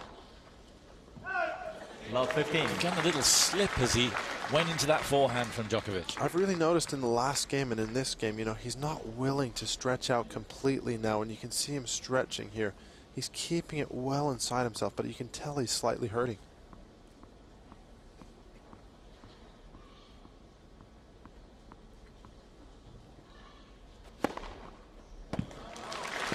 Love 15. He got a little slip as he went into that forehand from Djokovic. I've really noticed in the last game and in this game, you know, he's not willing to stretch out completely now, and you can see him stretching here. He's keeping it well inside himself, but you can tell he's slightly hurting.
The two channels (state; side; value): identical; both; correlation 1.00